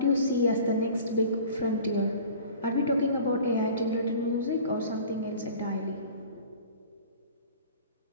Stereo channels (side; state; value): both; inverted; correlation -0.44